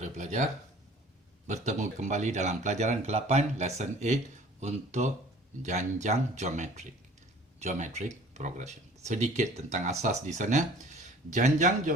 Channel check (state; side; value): normal; both; correlation 0.49